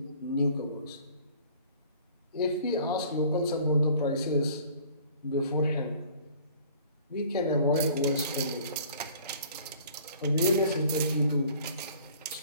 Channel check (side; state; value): both; inverted; correlation -0.51